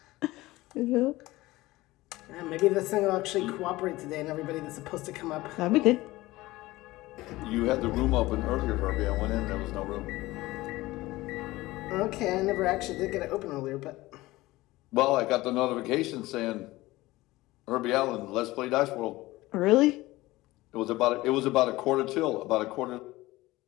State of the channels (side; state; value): right; quieter; 18.8 dB